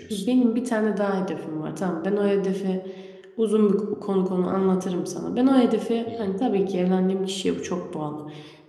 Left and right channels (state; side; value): identical; both; correlation 1.00